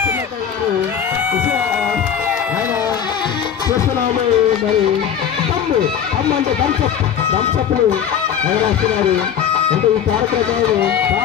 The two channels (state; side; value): quieter; right; 8.4 dB